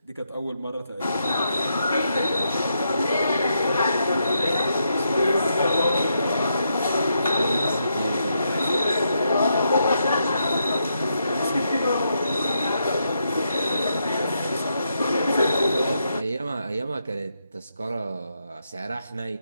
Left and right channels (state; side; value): inverted; both; correlation -0.81